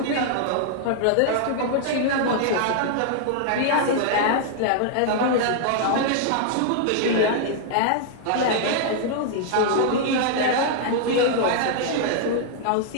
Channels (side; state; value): both; different; correlation -0.01